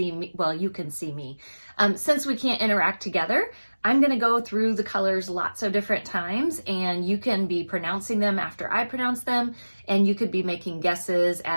me, well, you can see me. Since we can't interact together, I'm going to go through the colors lots of different times, and you can be pronouncing them after I pronounce them, and you could be making guesses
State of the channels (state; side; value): inverted; both; correlation -1.00